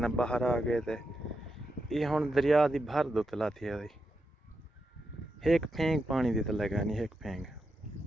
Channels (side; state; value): both; normal; correlation 0.86